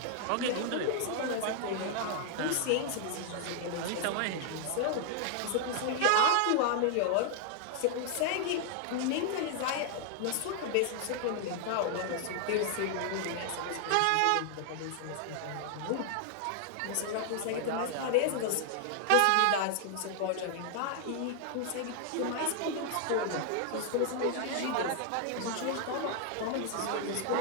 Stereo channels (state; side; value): different; both; correlation 0.00